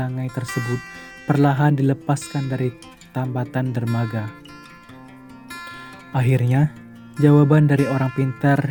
tersebut perlahan dilepaskan dari tambatan dermaga. Akhirnya, jawaban dari orang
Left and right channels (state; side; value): identical; both; correlation 1.00